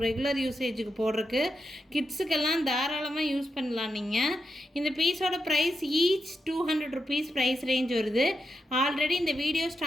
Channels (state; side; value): normal; both; correlation 0.86